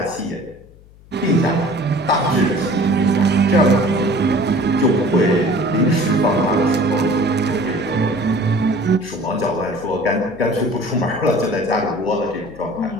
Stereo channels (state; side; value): noise; left; hum, 24 dB below the sound